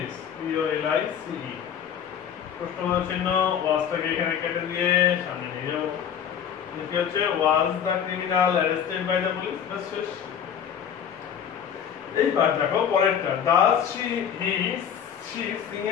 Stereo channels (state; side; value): quieter; right; 8.4 dB